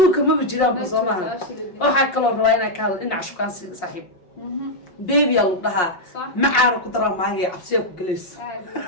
ma jiraan ba soo maaha waxaa kaloo rabaa inaan ka hadlo dhinaca shukaan saaxiib baby yaa lagu dhahaa macaana ku daraa maagaya cabsiyaa ku gelays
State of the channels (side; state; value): right; late; 5.6 ms